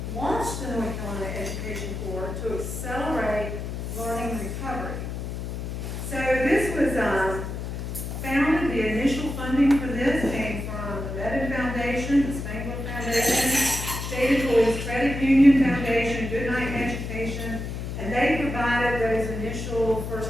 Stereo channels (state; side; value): noise; left; hum, 5 dB below the sound